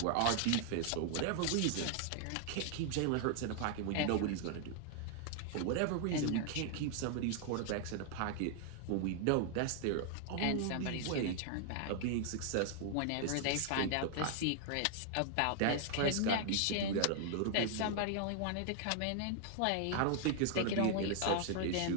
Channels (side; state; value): both; different; correlation 0.00